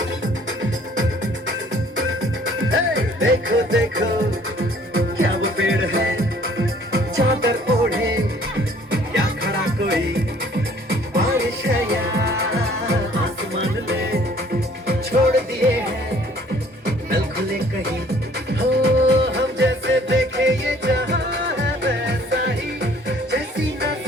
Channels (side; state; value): both; normal; correlation 0.56